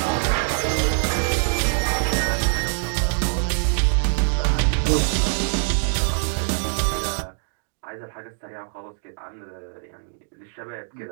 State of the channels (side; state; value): left; silent; digital silence